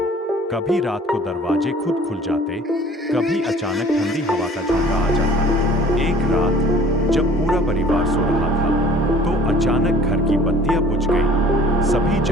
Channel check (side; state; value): both; normal; correlation 0.50